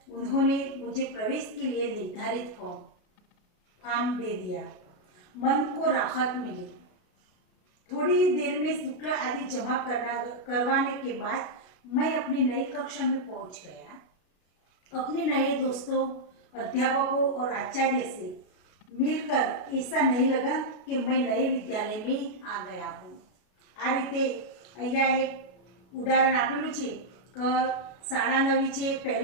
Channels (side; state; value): right; late; 33 ms